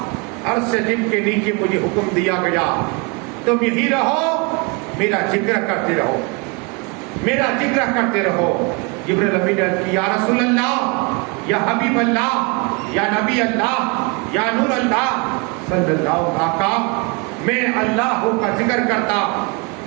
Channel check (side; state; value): left; quieter; 30.6 dB